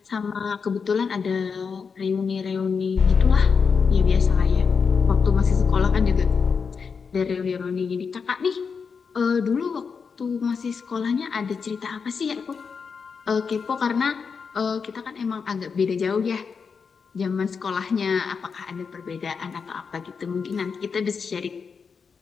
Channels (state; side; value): quieter; right; 5.7 dB